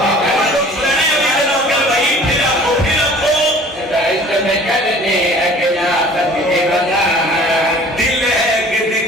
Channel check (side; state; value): both; normal; correlation 0.48